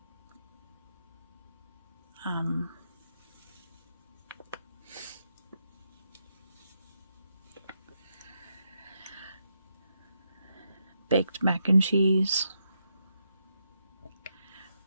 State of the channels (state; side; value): inverted; both; correlation -0.82